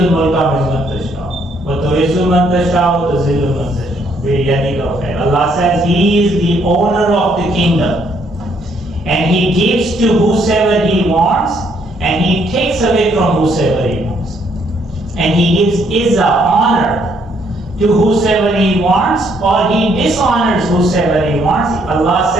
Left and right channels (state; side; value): normal; both; correlation 0.69